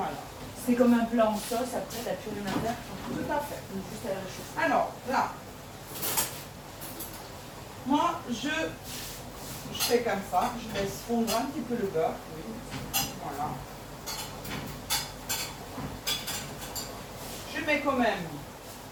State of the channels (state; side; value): identical; both; correlation 1.00